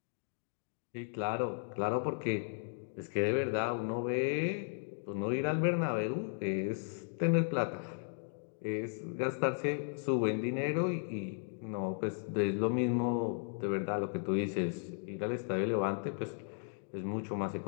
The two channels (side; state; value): right; silent; digital silence